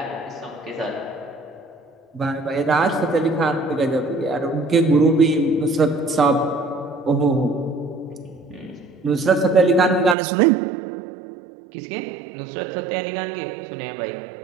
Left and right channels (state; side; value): drops out; left; at 10.2 s